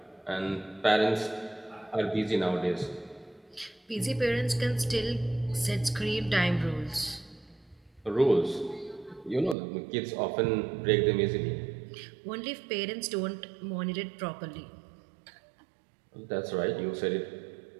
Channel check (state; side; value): drops out; left; at 9.6 s